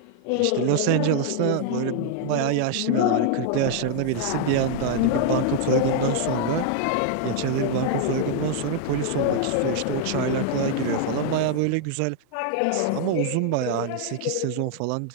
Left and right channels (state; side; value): different; both; correlation 0.00